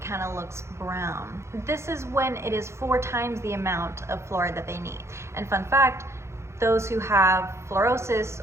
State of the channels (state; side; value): late; left; 0.13 ms